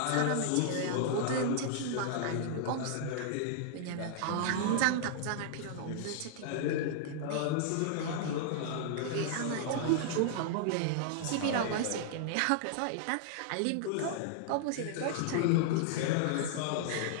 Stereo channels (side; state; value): both; different; correlation -0.01